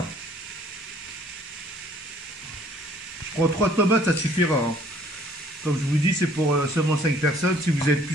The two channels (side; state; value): both; normal; correlation 0.58